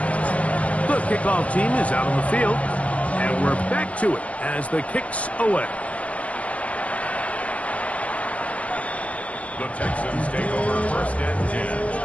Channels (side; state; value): right; late; 0.069 ms